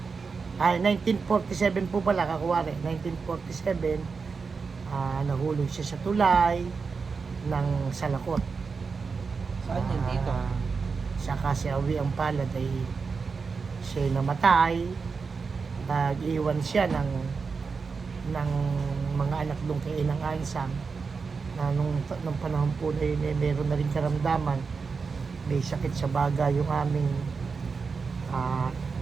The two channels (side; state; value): left; quieter; 5.0 dB